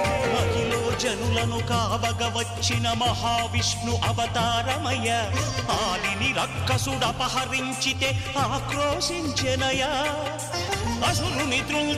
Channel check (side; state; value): both; identical; correlation 1.00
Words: జనులను కావగ వచ్చిన మహావిష్ణు అవతారమయ ఆలిని రక్కసుడపహరించితే ఆక్రోశించెనయా అసురుని